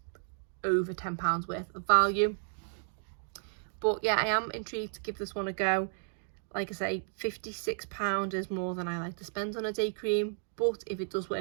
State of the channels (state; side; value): silent; left; digital silence